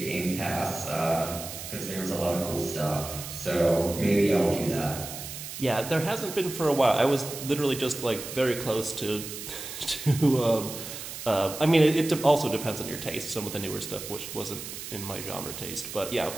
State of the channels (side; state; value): right; noise; hiss, 9 dB below the sound